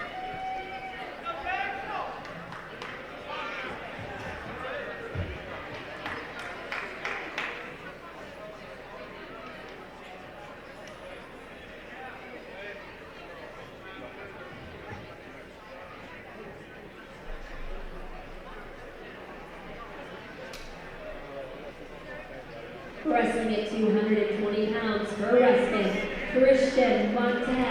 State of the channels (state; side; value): identical; both; correlation 1.00